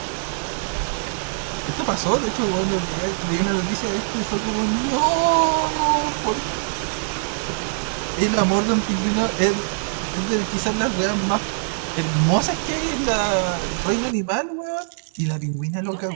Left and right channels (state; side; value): silent; left; digital silence